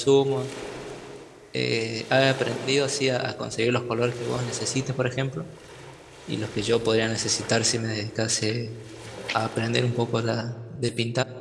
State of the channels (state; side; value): identical; both; correlation 1.00